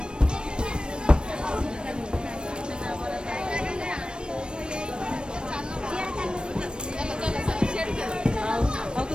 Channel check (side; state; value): left; late; 0.053 ms